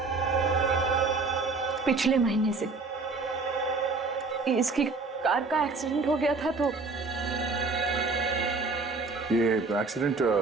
पिछले महीने से। इसकी कार का एक्सीडेंट हो गया था। तो ये एक्सीडेंट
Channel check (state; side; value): quieter; left; 4.0 dB